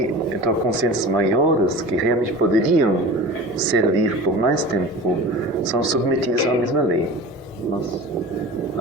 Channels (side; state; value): both; normal; correlation 0.35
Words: então, consciências maiores que realmente poderiam servir por mais tempo são submetidas à mesma lei. Mas